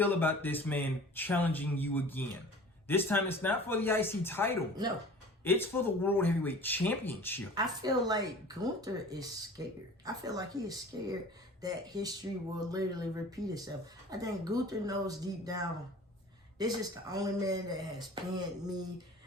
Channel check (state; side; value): normal; both; correlation 0.43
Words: about this man challenging you again? This time, it's not for the IC title. No. It's for the World Heavyweight Championship. I feel like Gunther is scared. I feel like he is scared that history will literally repeat itself. I think Gunther knows deep down, this is the only man that has pinned me.